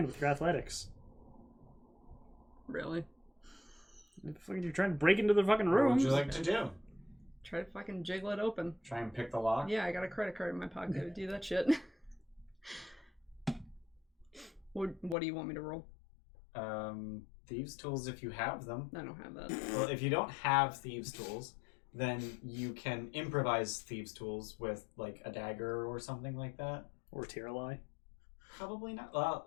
with your athletics. Really? You're trying to break into the fucking What room. would you like to do? Try to fucking jiggle it open. Try and pick the lock? Yeah, I got a credit card in my pocket to do that shit. What do you want me to roll? Thieves' tools if you have them. I don't have that. Well, if you don't have thieves' tools, then you can improvise thieves' tools with, like, a dagger or something like that. Or Tiralai. Probably not. Well,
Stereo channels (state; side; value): drops out; right; at 15.2 s